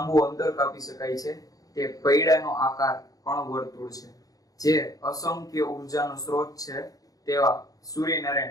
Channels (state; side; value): late; right; 0.17 ms